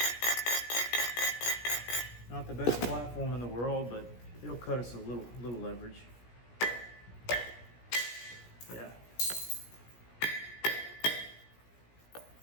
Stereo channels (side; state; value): right; late; 17 ms